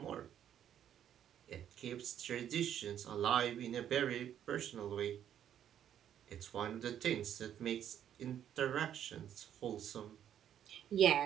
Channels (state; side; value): quieter; left; 10.0 dB